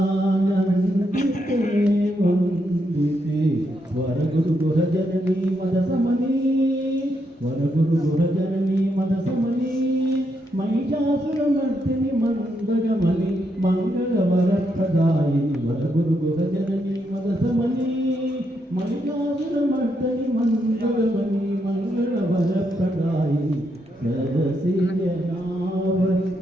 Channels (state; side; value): normal; both; correlation 0.80